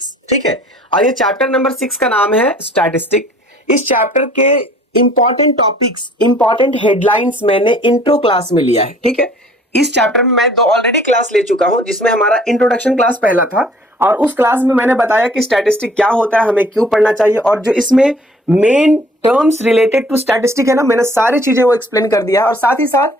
ठीक है, और ये चैप्टर नंबर 6 का नाम है स्टैटिस्टिक। इस चैप्टर के इंपॉर्टेंट टॉपिक्स, इंपॉर्टेंट हेडलाइंस मैंने इंट्रो क्लास में लिया है। ठीक है, इस चैप्टर में मैं 2 ऑलरेडी क्लास ले चुका हूं, जिसमें हमारा इंट्रोडक्शन क्लास पहला था और उस क्लास में मैंने बताया कि स्टैटिस्टिक क्या होता है, हमें क्यों पढ़ना चाहिए, और जो इसमें main terms related to statistic है ना, मैंने सारी चीजें वो एक्सप्लेन कर दिया है। और साथ ही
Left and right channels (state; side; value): normal; both; correlation 0.55